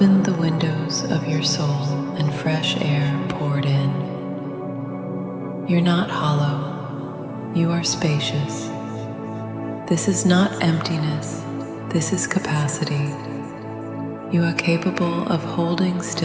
the windows of your soul and fresh air poured in. You're not hollow, you are spacious. This is not emptiness, this is capacity. You are capable of holding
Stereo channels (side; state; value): both; identical; correlation 1.00